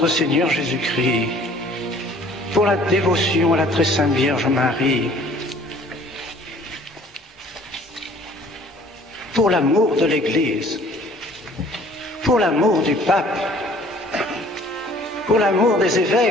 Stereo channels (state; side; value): normal; both; correlation 0.54